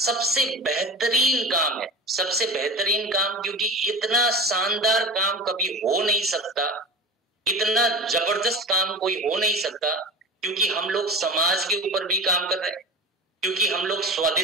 बेहतरीन काम है, सबसे बेहतरीन काम, क्योंकि इतना शानदार काम कभी हो नहीं सकता, इतना जबरदस्त काम कोई हो नहीं सकता, क्योंकि हम लोग समाज के ऊपर भी काम कर रहे हैं, क्योंकि हम लोग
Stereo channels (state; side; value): normal; both; correlation 0.31